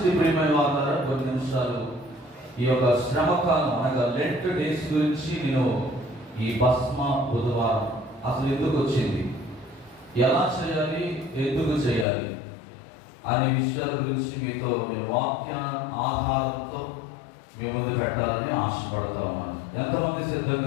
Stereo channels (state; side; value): drops out; right; at 12.1 s